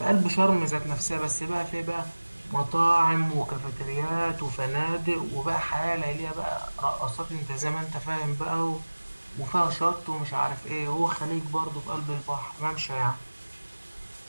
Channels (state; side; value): inverted; both; correlation -1.00